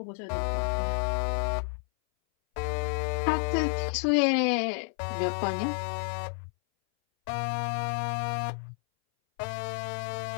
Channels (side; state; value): right; silent; 58 dB below the other